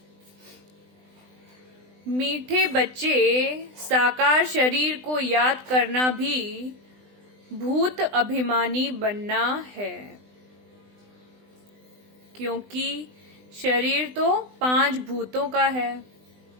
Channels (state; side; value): late; left; 20 ms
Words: मीठे बच्चे, साकार शरीर को याद करना भी भूत अभिमानी बनना है, क्योंकि शरीर तो 5 भूतों का है।